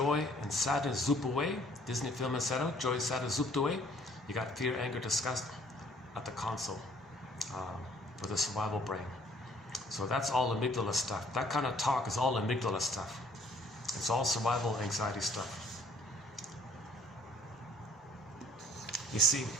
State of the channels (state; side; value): normal; both; correlation 0.59